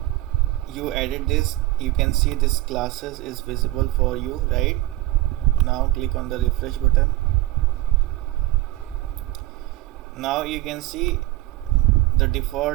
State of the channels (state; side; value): quieter; left; 18.2 dB